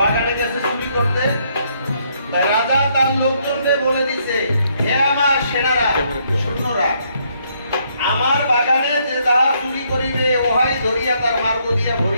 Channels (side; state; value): both; inverted; correlation -0.71